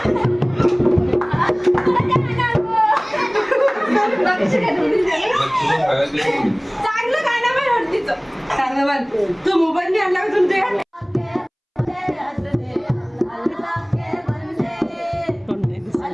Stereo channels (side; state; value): both; identical; correlation 1.00